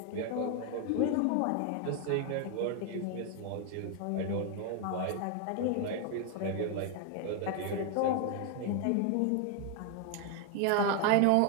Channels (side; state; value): both; different; correlation 0.00